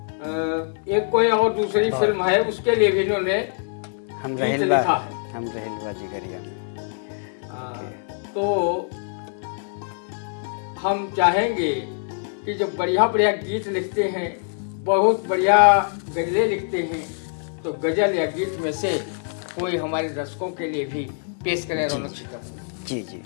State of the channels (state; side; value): silent; right; digital silence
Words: एक कोई और दूसरी फिल्म है उसके लिए भी इन्होंने गीत लिखा है। तो हम चाहेंगे कि जब बढ़िया बढ़िया गीत लिखते हैं, बहुत बढ़िया गज़लें लिखते हैं, तो गज़ल या गीत में से कोई हमारे दर्शकों के लिए भी पेश करें रौनक सीतापुरी। जी जी।